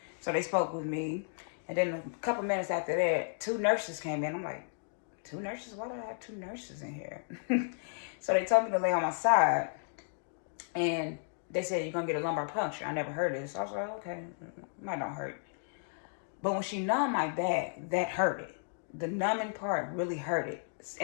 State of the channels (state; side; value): silent; right; digital silence